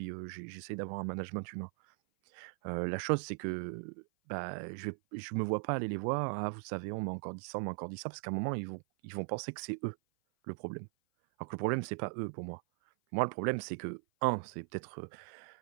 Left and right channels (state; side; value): silent; left; 52 dB below the other